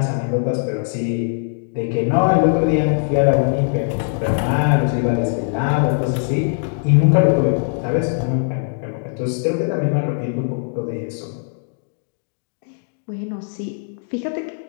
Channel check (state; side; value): silent; right; digital silence